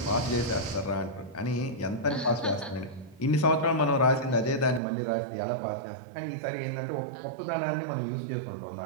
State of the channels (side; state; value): left; drops out; at 4.8 s